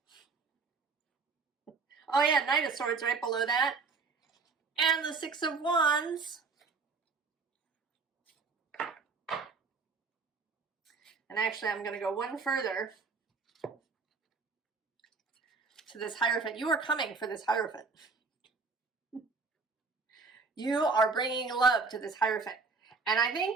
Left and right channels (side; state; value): left; quieter; 4.6 dB